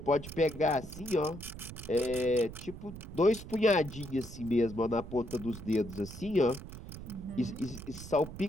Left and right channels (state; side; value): noise; right; rumble, 12 dB below the sound